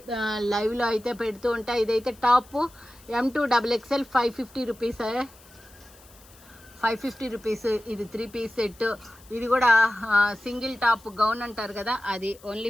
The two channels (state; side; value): noise; left; hiss, 25 dB below the sound